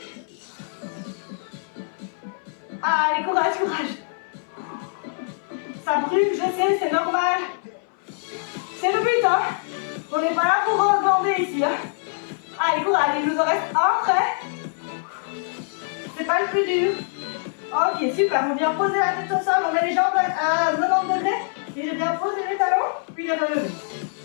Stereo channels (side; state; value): right; silent; 61 dB below the other